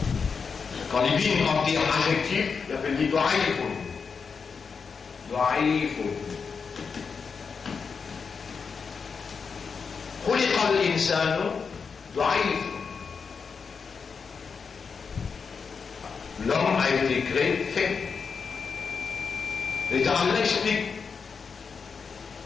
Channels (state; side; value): quieter; right; 5.6 dB